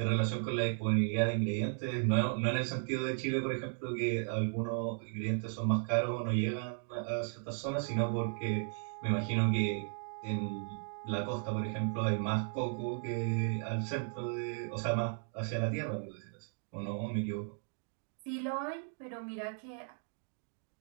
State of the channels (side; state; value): left; silent; 54 dB below the other